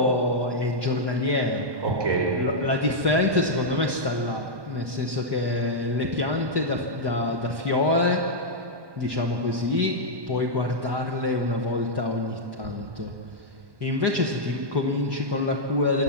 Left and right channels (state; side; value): late; left; 1.1 ms